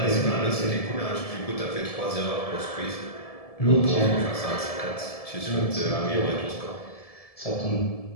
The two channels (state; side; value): late; right; 1.7 ms